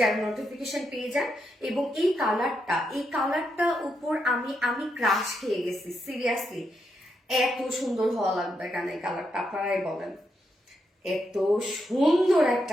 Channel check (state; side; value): normal; both; correlation 0.82